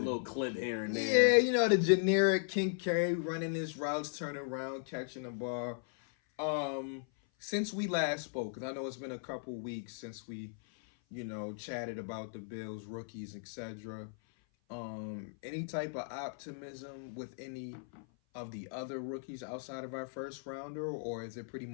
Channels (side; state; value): right; silent; 53 dB below the other